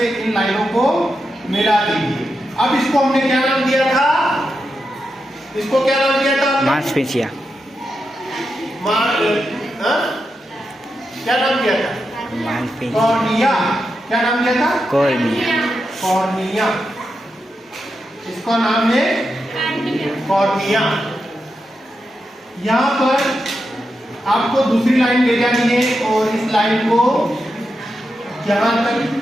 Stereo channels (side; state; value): both; normal; correlation 0.87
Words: इन लाइनों को मिला दीजिए। अब इसको हमने क्या नाम दिया था? इसको क्या नाम दिया था? मांसपेशियां। क्या नाम दिया था? मांसपेशियां। कॉर्निया। क्या नाम दिया था? कॉर्निया। कॉर्निया। इसका नाम है कॉर्निया। यहाँ पर आपको दूसरी लाइन ले जानी है और इस लाइन को यहाँ तक